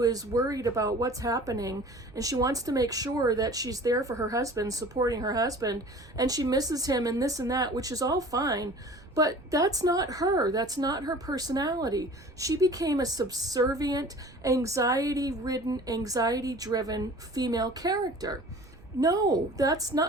is worried about what's happening, and she wants to make sure that she's there for her husband, supporting her husband, and she misses him and this and that, which is all fine, but that's not her. That's not her personality. She became a subservient, anxiety-ridden, anxiety-driven female character. No, that's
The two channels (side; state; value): right; noise; rumble, 23 dB below the sound